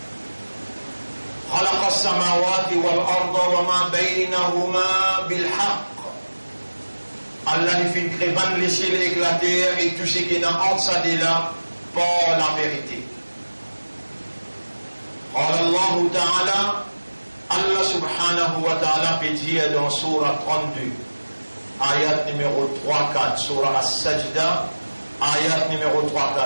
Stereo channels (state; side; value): inverted; both; correlation -1.00